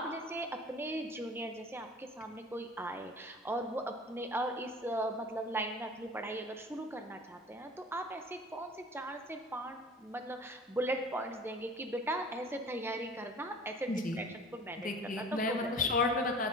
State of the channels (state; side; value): normal; both; correlation 0.44